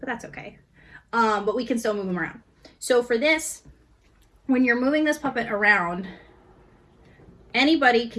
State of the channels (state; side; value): identical; both; correlation 1.00